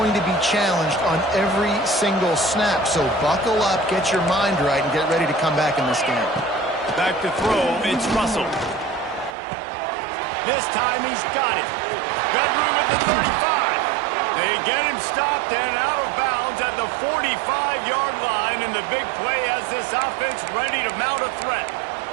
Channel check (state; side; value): drops out; left; at 9.3 s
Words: to be challenged on every single snap. So buckle up, get your mind right, and get ready to come back in this game. Back to throw, it's Russell. This time he's got it. Got room at the 35. They get him stopped and out of bounds at the 45-yard line, and the big play has this offense ready to mount a threat.